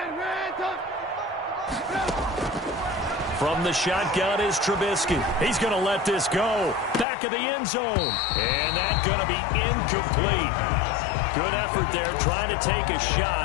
From the shotgun is Trubisky. He's going to let this go. Back of the end zone. And that's going to be incomplete. Good effort there, trying to take a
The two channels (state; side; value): drops out; right; at 7.1 s